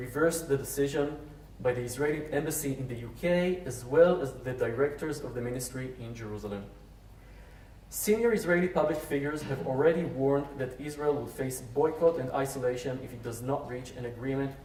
the decision by the Israeli embassy in the UK, as well as the directors of the ministry in Jerusalem. Senior Israeli public figures have already warned that Israel will face boycott and isolation if it does not reach an agreement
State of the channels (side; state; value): both; identical; correlation 1.00